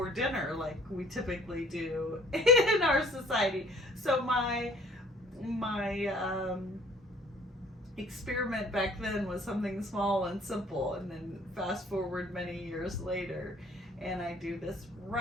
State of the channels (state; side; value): normal; both; correlation 0.55